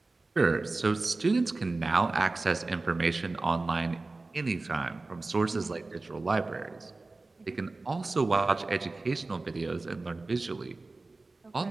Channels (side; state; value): left; quieter; 3.4 dB